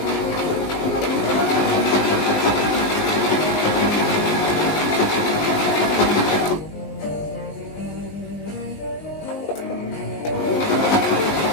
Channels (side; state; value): right; late; 20 ms